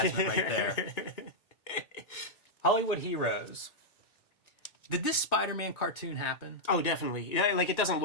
right there. Hollywood Heroes. Did this Spider-Man cartoon happen? Oh, definitely. Yeah, like, it doesn't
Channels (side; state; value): right; late; 1.9 ms